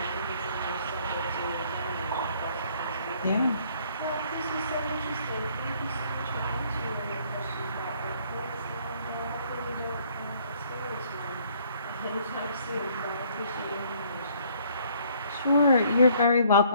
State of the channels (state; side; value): inverted; both; correlation -0.62